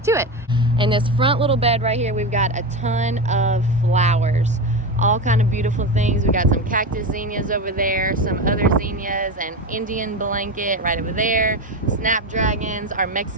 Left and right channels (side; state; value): both; normal; correlation 0.19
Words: to it. In this front little bed right here, we've got a ton of flowers. All kind of beautiful things. We got some cactus zinnias over there, some other zinnias, an Indian blanket right over there, snapdragons, our